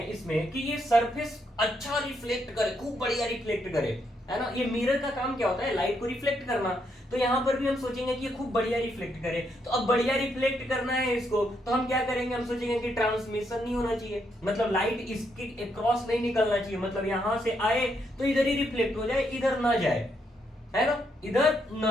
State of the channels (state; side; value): normal; both; correlation 0.77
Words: इसमें कि ये सरफेस अच्छा रिफ्लेक्ट करे, खूब बढ़िया रिफ्लेक्ट करे, है ना? ये मिरर का काम क्या होता है? लाइट को रिफ्लेक्ट करना। तो यहां पर भी हम सोचेंगे कि ये खूब बढ़िया रिफ्लेक्ट करे। तो अब बढ़िया रिफ्लेक्ट करना है इसको, तो हम क्या करेंगे? हम सोचेंगे कि ट्रांसमिशन नहीं होना चाहिए, मतलब लाइट इसके क्रॉस नहीं निकलना चाहिए, मतलब यहां से आए तो इधर ही रिफ्लेक्ट हो जाए, इधर ना जाए, है ना? इधर